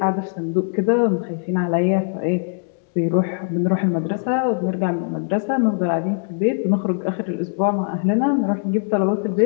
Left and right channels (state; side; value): silent; right; digital silence